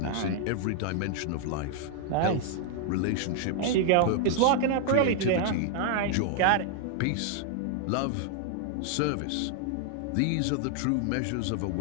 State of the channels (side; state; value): both; different; correlation 0.00